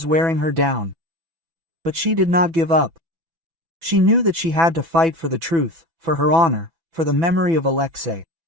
wearing her down. But she did not give up. She knew that she had to fight for the truth, for her honor, for the memory of Alexei.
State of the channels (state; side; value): late; left; 6.0 ms